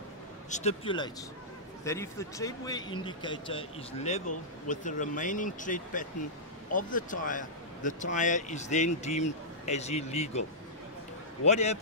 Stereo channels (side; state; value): both; normal; correlation -0.14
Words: stipulates that if the tread wear indicator is level with the remaining tread pattern of the tyre is then deemed as illegal. What